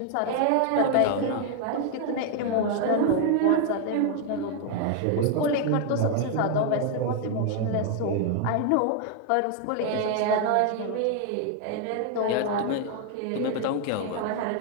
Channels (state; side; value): different; both; correlation 0.00